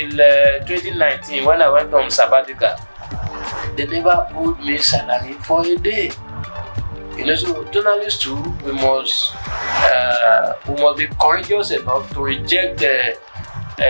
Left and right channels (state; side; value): inverted; both; correlation -1.00